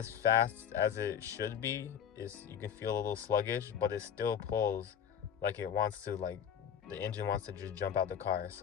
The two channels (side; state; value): right; quieter; 8.6 dB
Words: fast as it should be. You can feel a little sluggish, but it still pulls like it wants to. Like the engine wants to just jump out the car.